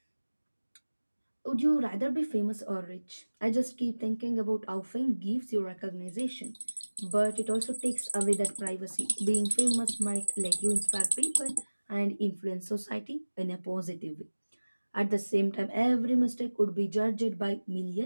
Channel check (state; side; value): inverted; both; correlation -1.00